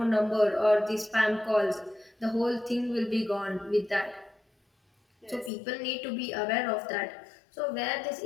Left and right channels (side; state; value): right; drops out; at 5.5 s